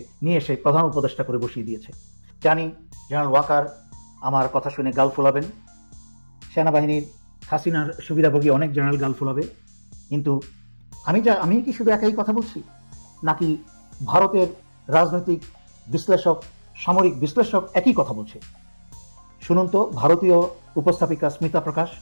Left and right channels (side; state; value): both; inverted; correlation -1.00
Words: এসে প্রধান উপদেষ্টা করে বসিয়ে দিয়েছে। জানি জেনারেল ওয়াকার আমার কথা শুনে গাল ফোলাবেন, সেনাবাহিনীর হাসিনার সুবিধাভোগী অনেক জেনারেল গাল ফোলাবে, কিন্তু আমি কি শুধু একাই কথা বলছি নাকি ভারতের রাজনৈতিক বিশ্লেষক, সামরিক বিশ্লেষক একই কথা বলছে? শুনুন তো ভারতীয় উপস্থাপিকা স্মিতা প্রকাশ